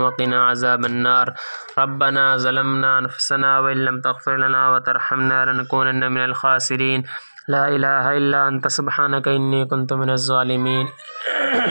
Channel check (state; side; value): inverted; both; correlation -1.00